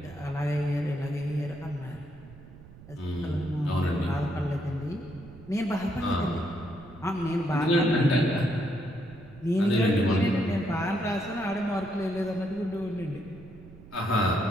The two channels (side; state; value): right; noise; rumble, 19 dB below the sound